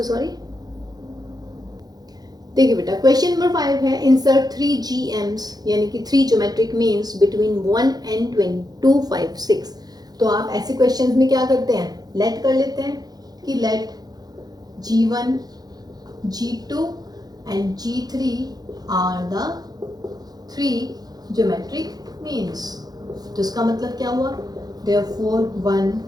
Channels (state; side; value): late; left; 0.19 ms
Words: sorry. देखिए बेटा क्वेश्चन नंबर 5 है इंसर्ट 3 GMs यानी कि 3 ज्योमेट्रिक मीन्स बिटवीन 1 and 2, 5, 6। तो आप ऐसे क्वेश्चंस में क्या करते हैं, लेट कर लेते हैं कि let G1, G2 and G3 are the 3 geometric means. तो इसका मतलब क्या हुआ, therefore 1